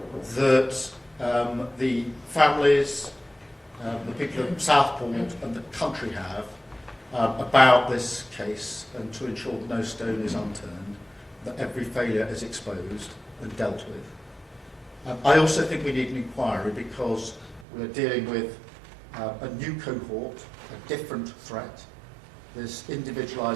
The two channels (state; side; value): drops out; left; at 17.7 s